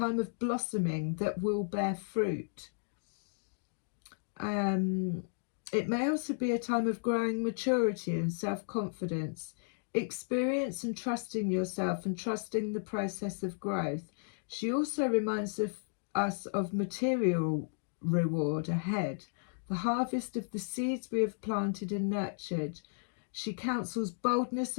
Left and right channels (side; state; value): right; silent; digital silence